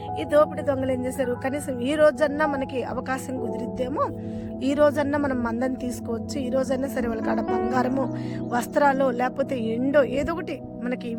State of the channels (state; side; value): identical; both; correlation 1.00